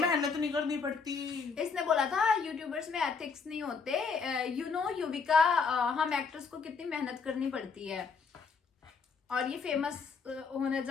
नहीं करनी पड़ती। इसने बोला था यूट्यूबर्स में एथिक्स नहीं होते। यू नो युविका, हम एक्टर्स को कितनी मेहनत करनी पड़ती है, और ये फेमस होना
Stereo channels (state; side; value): quieter; right; 5.2 dB